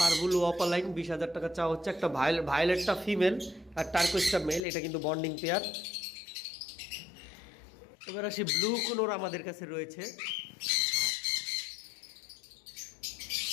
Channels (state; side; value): drops out; right; at 4.6 s